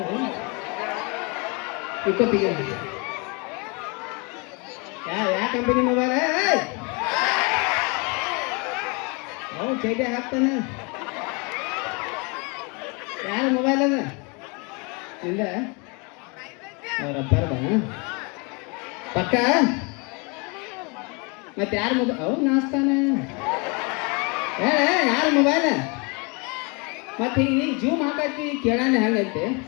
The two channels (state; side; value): quieter; right; 31.3 dB